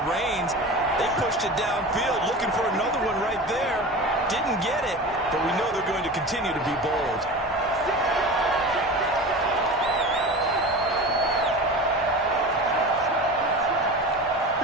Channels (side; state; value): both; normal; correlation 0.32